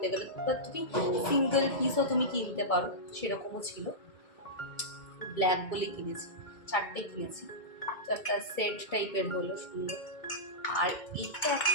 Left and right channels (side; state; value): right; late; 2.3 ms